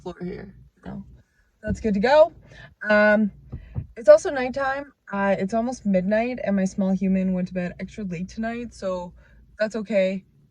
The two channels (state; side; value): identical; both; correlation 1.00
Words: here. No, that's good to go. Um, it's also nighttime. It's almost midnight, and my small human went to bed extra late tonight, so that's okay.